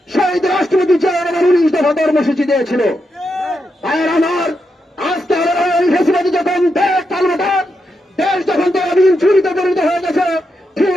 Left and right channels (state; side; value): normal; both; correlation 0.85